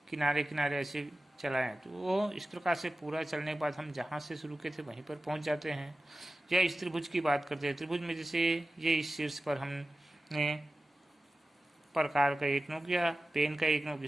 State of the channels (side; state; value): both; normal; correlation 0.95